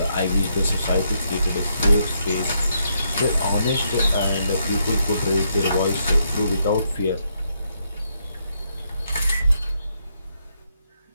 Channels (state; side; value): inverted; both; correlation -0.76